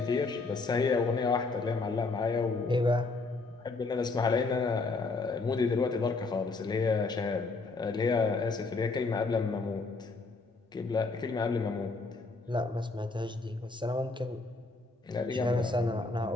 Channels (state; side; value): quieter; right; 3.7 dB